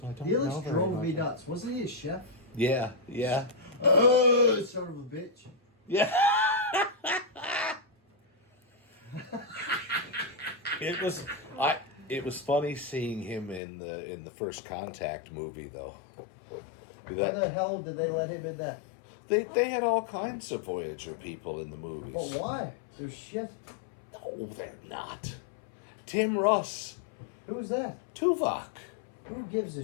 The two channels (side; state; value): right; drops out; at 13.6 s